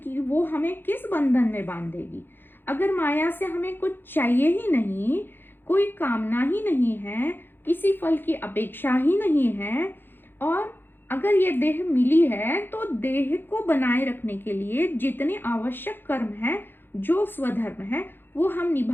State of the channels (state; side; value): late; right; 0.10 ms